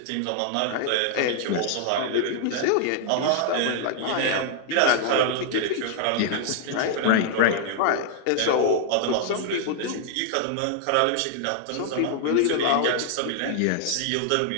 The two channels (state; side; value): different; both; correlation 0.00